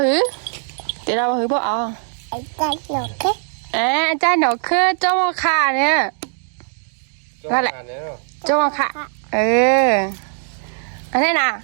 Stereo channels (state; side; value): silent; left; 63 dB below the other